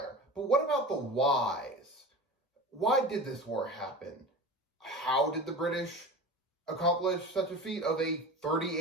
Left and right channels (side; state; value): both; normal; correlation 0.32